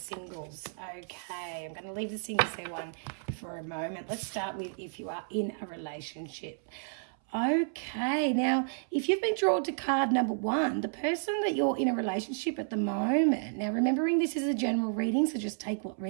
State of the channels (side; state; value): left; silent; 57 dB below the other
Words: Okay, I'm going to leave the singles there one for a moment. Let's start with if you are in a relationship. Okay, now if you've been drawn to card number one, the person that you're in a relationship at the moment, now remembering this is a general reading, so just take what